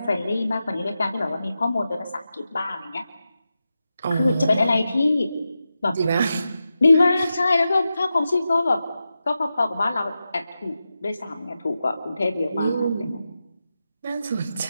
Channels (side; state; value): both; inverted; correlation -0.91